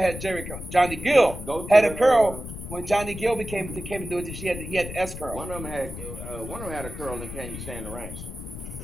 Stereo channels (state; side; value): noise; left; rumble, 9 dB below the sound